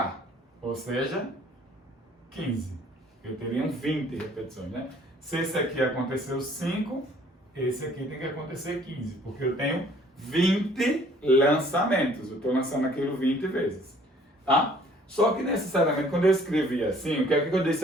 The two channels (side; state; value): both; normal; correlation 0.57